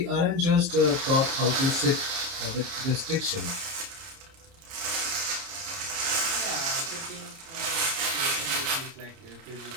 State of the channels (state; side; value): late; left; 30 ms